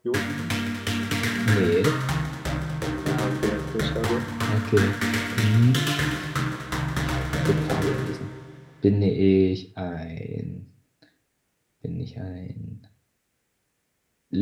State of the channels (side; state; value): both; identical; correlation 1.00